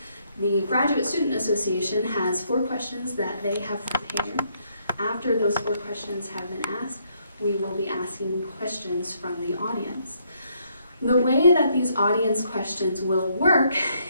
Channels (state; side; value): inverted; both; correlation -0.72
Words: The Graduate Student Association has 4 questions that they have prepared. After those 4 questions have been asked, we will be asking questions from the audience. The way that these audience questions will work